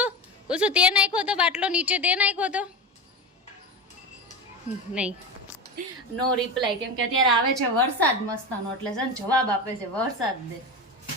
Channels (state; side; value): normal; both; correlation 0.23